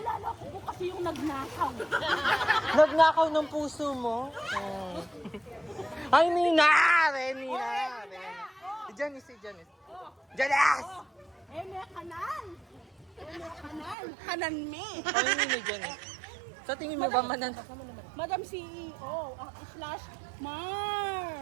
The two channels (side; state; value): left; drops out; at 14.0 s